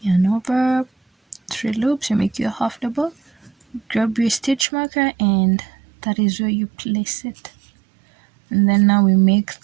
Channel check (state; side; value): drops out; left; at 4.7 s